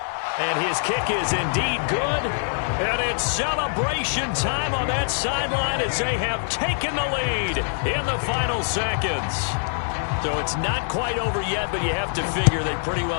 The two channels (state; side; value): silent; right; digital silence